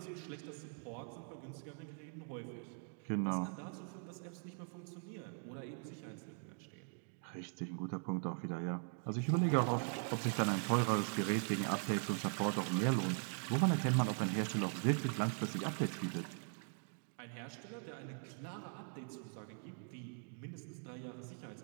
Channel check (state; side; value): silent; left; 50 dB below the other